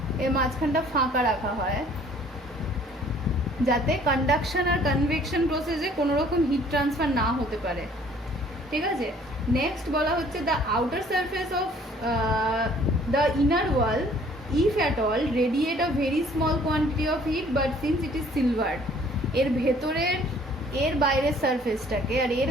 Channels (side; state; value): both; normal; correlation 0.56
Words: এর মাঝখানটা ফাঁকা রাখা হয় যাতে কন্ডাকশন আর কনভেকশন প্রসেসে কোনো রকম হিট ট্রান্সফার না হতে পারে, ঠিক আছে। নেক্সট বলা হচ্ছে the outer surface of the inner wall if at all radiate a very small quantity of heat but since it is silver. এর ভেতরের, এর বাইরের সারফেসটাকে আর এর